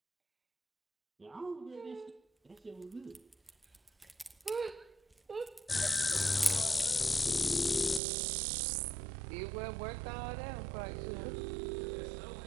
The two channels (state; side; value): drops out; left; at 8.0 s